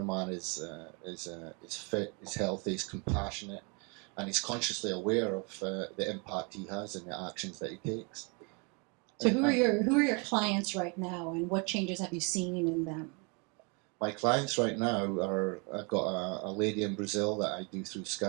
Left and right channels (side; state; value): left; quieter; 33.0 dB